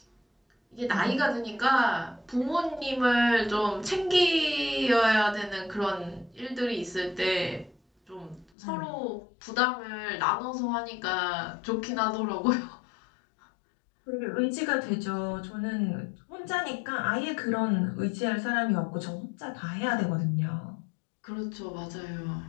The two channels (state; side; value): drops out; right; at 8.5 s